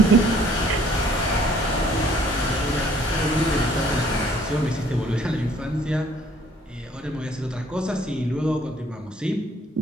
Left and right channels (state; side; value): normal; both; correlation 0.59